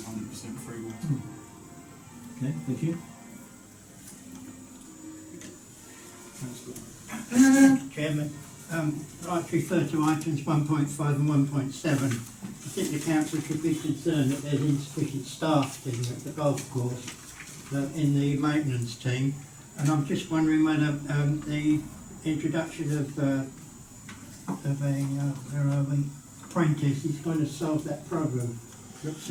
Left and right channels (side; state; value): both; identical; correlation 1.00